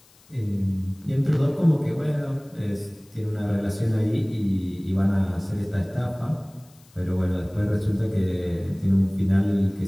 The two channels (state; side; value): noise; left; hiss, 29 dB below the sound